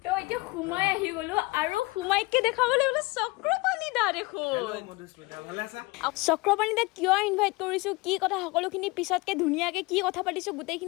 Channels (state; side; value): quieter; right; 24.2 dB